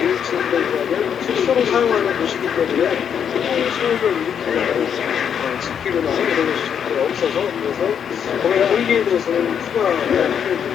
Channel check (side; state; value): right; quieter; 8.1 dB